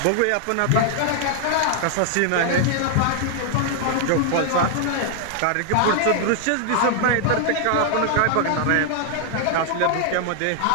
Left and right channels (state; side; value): different; both; correlation 0.00